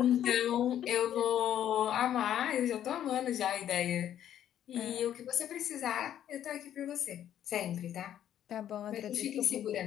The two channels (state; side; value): quieter; right; 10.8 dB